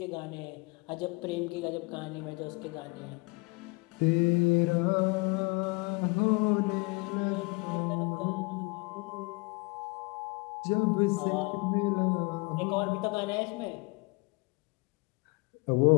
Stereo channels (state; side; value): quieter; right; 27.8 dB